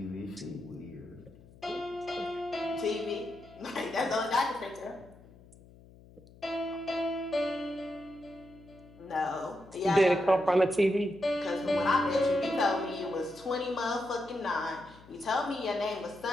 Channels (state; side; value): noise; left; hum, 23 dB below the sound